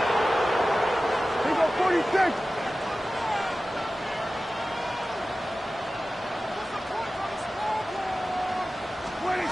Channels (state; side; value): normal; both; correlation 0.95